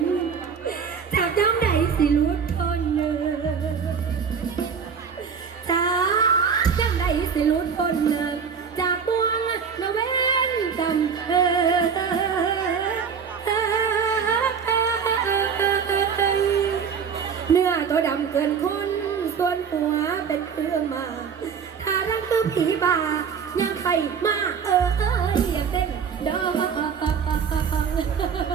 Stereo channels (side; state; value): left; quieter; 6.5 dB